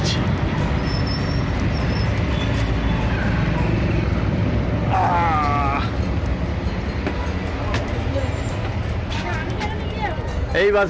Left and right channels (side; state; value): both; identical; correlation 1.00